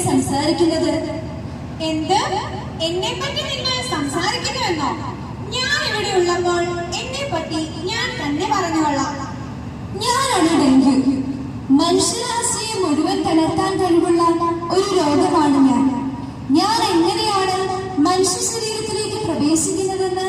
സംസാരിക്കുന്നത്. എന്ത്? എന്നെ പറ്റി നിങ്ങൾ സംസാരിക്കുന്നുവെന്നോ? ഞാൻ ഇവിടെ ഉള്ളപ്പോൾ എന്നെ പറ്റി ഞാൻ തന്നെ പറഞ്ഞുകൊള്ളാം. ഞാനാണ് ഡെങ്കു. മനുഷ്യരാശിയെ മുഴുവൻ തളർത്താൻ കഴിവുള്ള ഒരു രോഗമാണ് ഞാൻ. ഞാൻ എങ്ങനെയാണ് മനുഷ്യ ശരീരത്തിലേക്ക് പ്രവേശിക്കുന്നതെന്ന്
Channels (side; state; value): both; identical; correlation 1.00